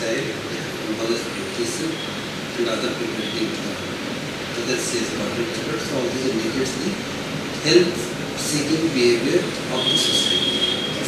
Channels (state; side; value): identical; both; correlation 1.00